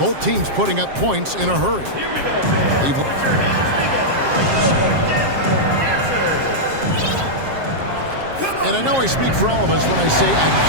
teams putting up points in a hurry. And I know I speak for all of us when I say I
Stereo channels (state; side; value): late; left; 7.5 ms